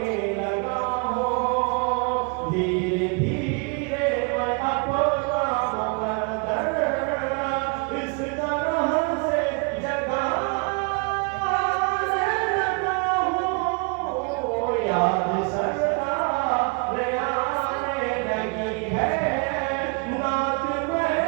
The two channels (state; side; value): quieter; left; 33.7 dB